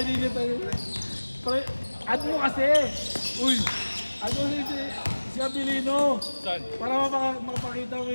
niya talaga. Pre, ano mo kasi? Uy, ano si Abilino? Saan? Para mapakita mo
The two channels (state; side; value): inverted; both; correlation -1.00